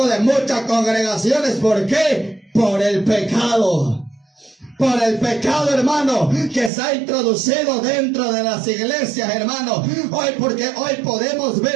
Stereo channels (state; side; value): drops out; left; at 6.7 s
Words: de muchas congregaciones. ¿Por qué? Por el pecado. Por el pecado, hermano, que se ha introducido dentro de las iglesias, hermano. Porque hoy podemos